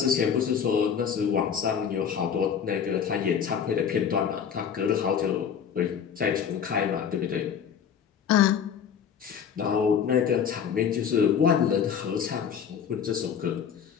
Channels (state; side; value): quieter; right; 7.7 dB